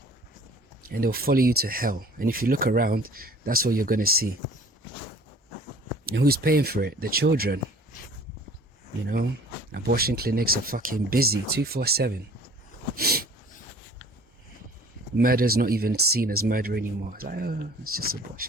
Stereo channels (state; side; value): normal; both; correlation 0.49